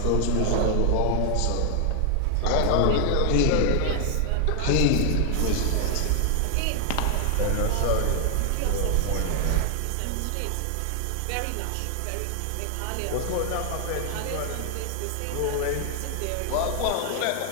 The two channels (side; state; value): both; different; correlation 0.00